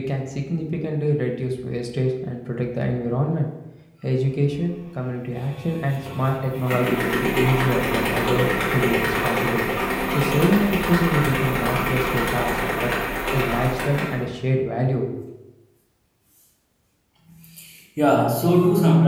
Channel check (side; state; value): both; identical; correlation 1.00